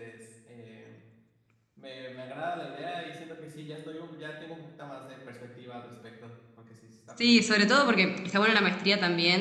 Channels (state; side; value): identical; both; correlation 1.00